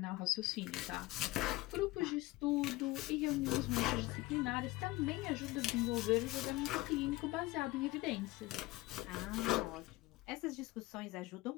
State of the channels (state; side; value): quieter; right; 19.4 dB